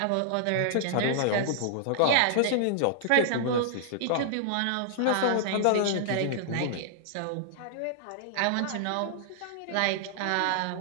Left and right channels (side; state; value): both; different; correlation -0.01